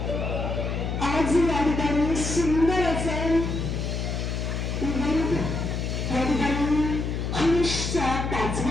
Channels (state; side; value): noise; left; hum, 2 dB below the sound